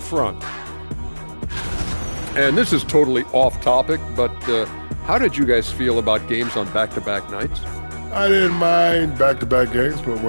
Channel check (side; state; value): both; inverted; correlation -1.00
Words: And this is totally off topic, but how did you guys feel about games on back-to-back nights? I didn't mind back-to-back games, but